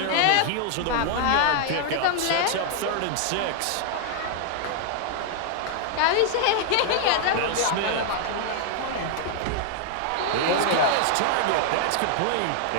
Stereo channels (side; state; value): both; different; correlation 0.00